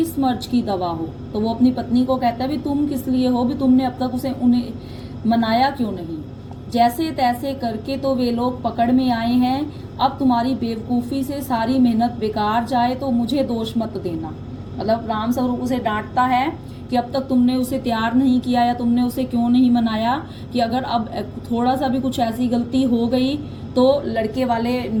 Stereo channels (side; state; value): both; identical; correlation 1.00